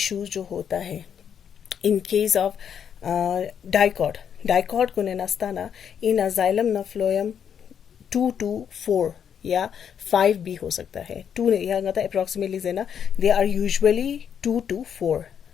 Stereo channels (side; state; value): right; quieter; 8.1 dB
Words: जो होता है इन केस ऑफ डाइकॉट, डाइकॉट को ने नास्ता ना इन जाइलम ना फ्लोएम 2 to 4 या 5 भी हो सकता है। 2 ने यहाँ गता अप्रॉक्सीमेटली जेना दे आर यूजुअली 2 to 4